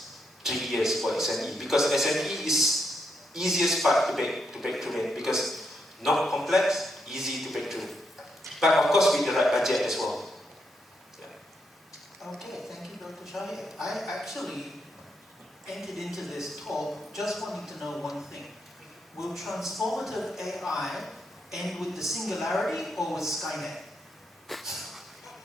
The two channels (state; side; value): normal; both; correlation 0.80